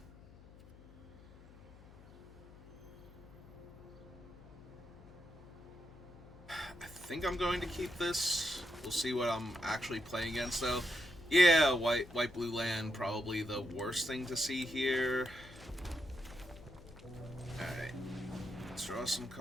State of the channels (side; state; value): left; noise; hum, 20 dB below the sound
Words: I think I'm going to keep this. We'll see what I'm actually playing against, though. Yeah, white blue land, probably the worst thing to see here. Alright. Let's draw some